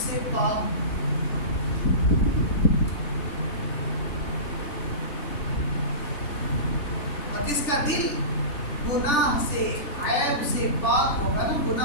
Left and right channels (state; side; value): late; right; 3.4 ms